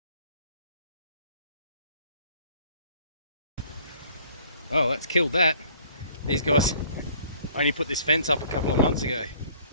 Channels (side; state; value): both; inverted; correlation -0.56